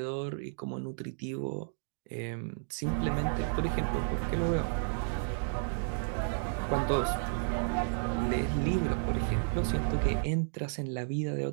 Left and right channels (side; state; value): left; silent; digital silence